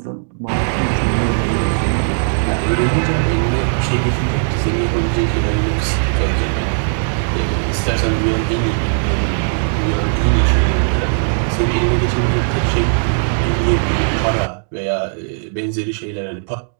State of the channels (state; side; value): silent; left; digital silence